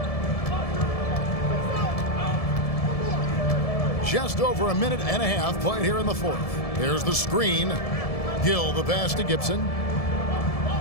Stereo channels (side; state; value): right; late; 1.7 ms